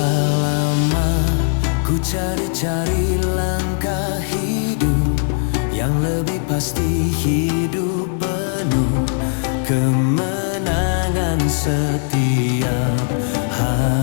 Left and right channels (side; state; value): right; silent; 66 dB below the other